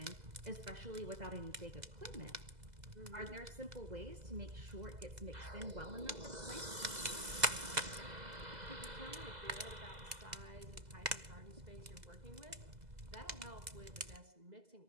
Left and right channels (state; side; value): late; left; 2.0 ms